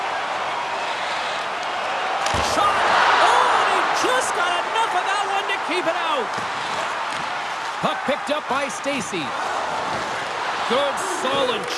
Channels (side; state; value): both; identical; correlation 1.00